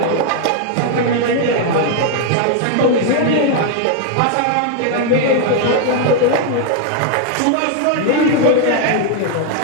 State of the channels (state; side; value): different; both; correlation 0.00